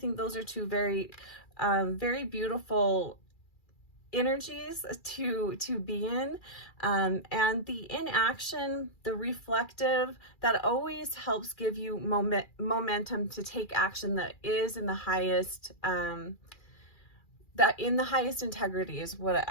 those are two very beautiful energies to be in, and the inaction, the reflective, that always helps give you momentum to take action that is in the highest integrity is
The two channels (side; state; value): right; late; 2.4 ms